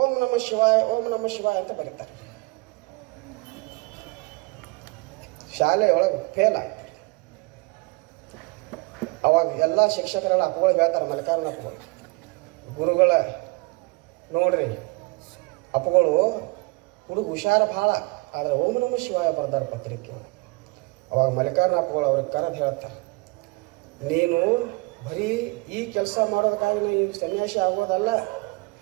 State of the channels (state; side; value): quieter; left; 26.5 dB